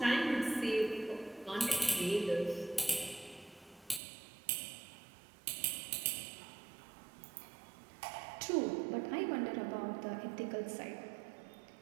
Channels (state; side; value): drops out; left; at 4.0 s